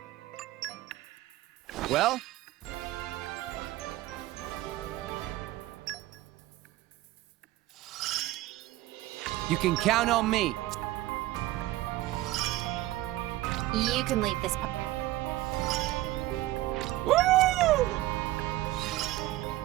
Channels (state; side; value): quieter; left; 16.6 dB